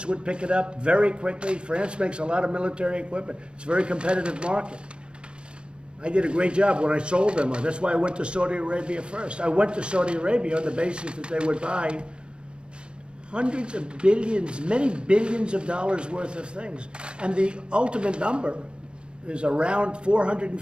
would pick it up very quickly. France makes a lot of military equipment. It's a very competitive market. I did a great job when I sold them. That's why I went to Saudi Arabia first. I went to Saudi Arabia on the basis that they would buy hundreds of billions, many billions of dollars worth of things. And the ultimate number is around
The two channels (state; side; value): late; left; 0.054 ms